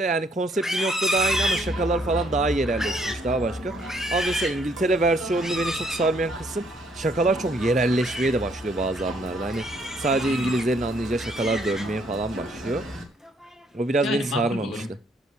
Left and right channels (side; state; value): both; normal; correlation 0.67